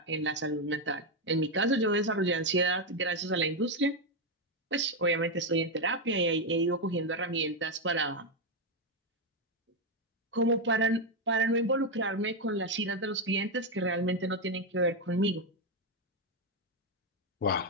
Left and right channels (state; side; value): normal; both; correlation 0.05